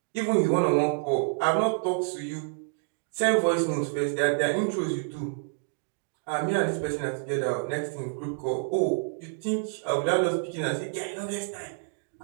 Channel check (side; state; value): left; silent; digital silence